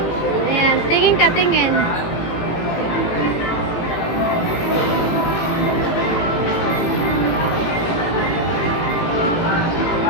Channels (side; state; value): right; late; 17 ms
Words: Ayan, tingin ka, tingin.